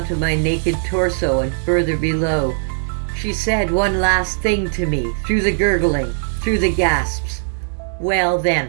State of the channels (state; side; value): silent; left; 66 dB below the other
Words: my naked torso and further below. She said one last thing to me, through the gurgling, through the gasps. Well